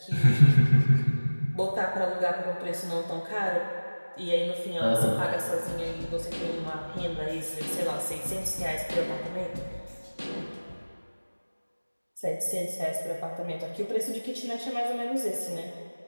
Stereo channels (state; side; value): inverted; both; correlation -1.00